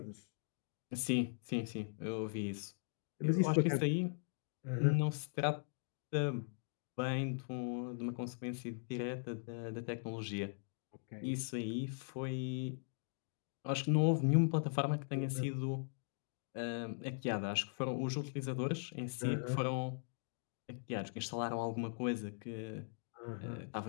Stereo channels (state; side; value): silent; right; digital silence